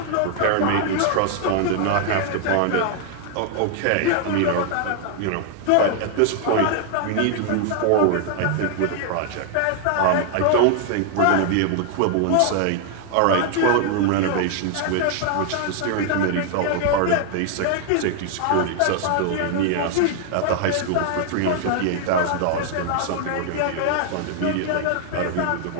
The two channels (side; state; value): both; different; correlation 0.00